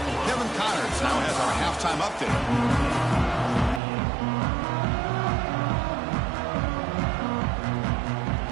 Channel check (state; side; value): drops out; left; at 3.8 s